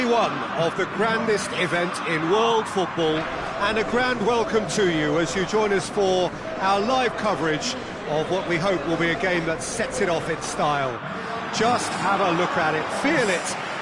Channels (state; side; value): identical; both; correlation 1.00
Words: one of the grandest event in world football, and a grand welcome to you as you join us for our live coverage of what we hope will be a game that sets it off in style. Just have a look at it, feel it.